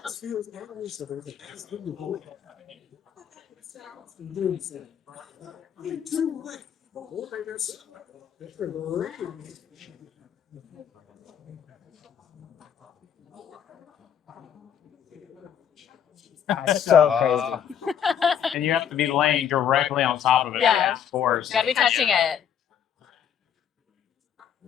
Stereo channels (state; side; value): quieter; right; 8.8 dB